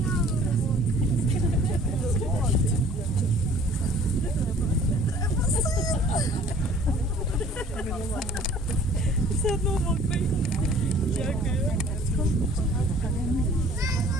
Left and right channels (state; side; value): normal; both; correlation 0.52